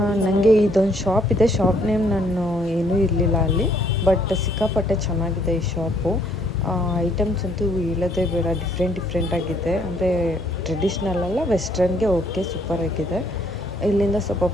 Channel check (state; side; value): normal; both; correlation 0.65